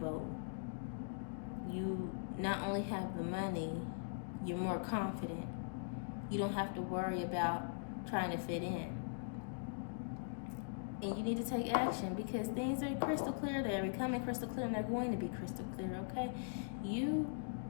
You not only have the money, you're more confident. You don't have to worry about trying to fit in. And you need to take action, because things are crystal clear. They're becoming crystal clear, and they're going to be crystal clear, okay?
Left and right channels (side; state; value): right; silent; digital silence